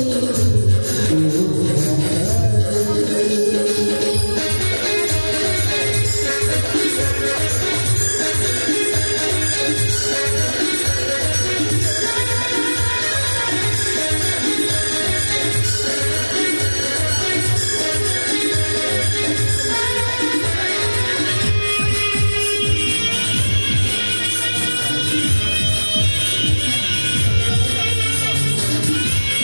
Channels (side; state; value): both; inverted; correlation -1.00